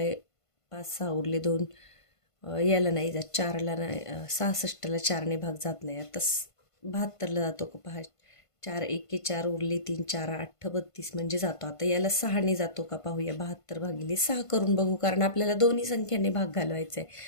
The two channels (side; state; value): right; late; 1.5 ms